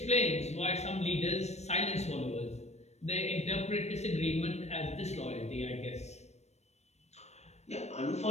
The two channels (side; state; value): right; late; 0.32 ms